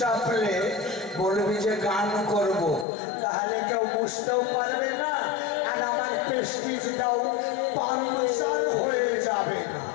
বলবি যে গান করব তাহলে কেউ বুঝতেও পারবে না আর আমার প্রেস্টিজটাও পাংচার হয়ে যাবে না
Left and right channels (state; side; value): drops out; right; at 2.9 s